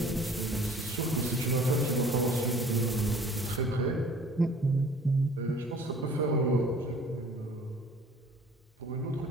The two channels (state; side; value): normal; both; correlation 0.50